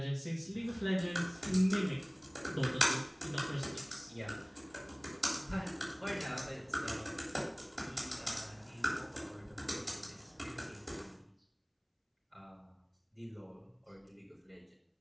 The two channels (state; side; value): identical; both; correlation 1.00